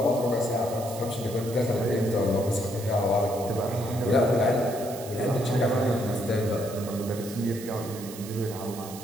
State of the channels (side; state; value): right; noise; hiss, 14 dB below the sound